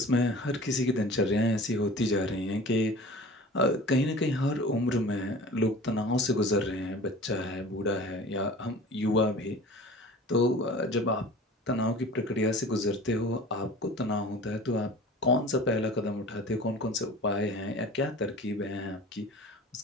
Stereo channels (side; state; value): both; normal; correlation 0.41